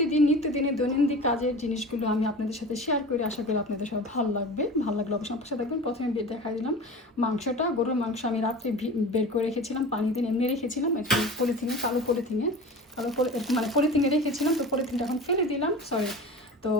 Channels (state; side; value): normal; both; correlation 0.34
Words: নিত্যদিনের দৈনন্দিন কাজের জিনিসগুলো আমি আপনাদের সাথে শেয়ার করি। আশা করি আপনাদের সব ভালো লাগবে। ভালো লাগলে অবশ্যই আমার সাথে দেখবেন। প্রথমে দেখা দিলাম মাংসটা, গরুর মাংস আমি রাত্রে বের করে রেখেছিলাম, পানি দিয়ে এমনি রেখেছিলাম একটু পলিথিনে, মানে পলিথিনে রেখেছিলাম। তো পলিথিনটা এখন ফেলে দিলাম, সরি। তো